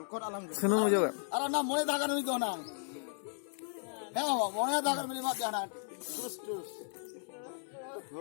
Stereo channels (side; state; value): right; silent; 54 dB below the other